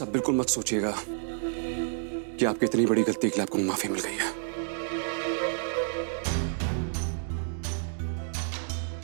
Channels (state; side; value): silent; left; digital silence